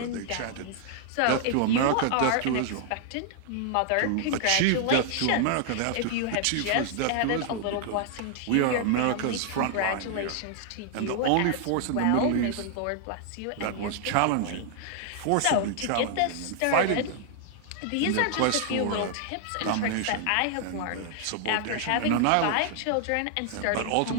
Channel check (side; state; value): both; different; correlation 0.00